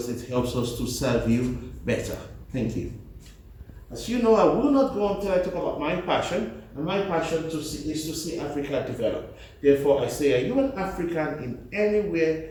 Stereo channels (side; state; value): both; identical; correlation 1.00